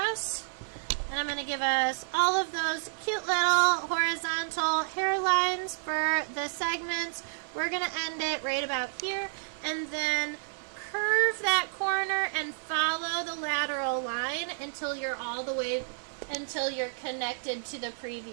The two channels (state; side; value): silent; left; digital silence